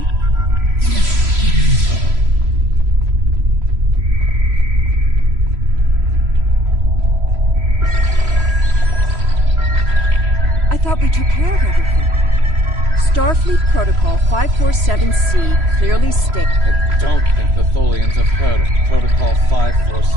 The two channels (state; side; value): late; left; 3.0 ms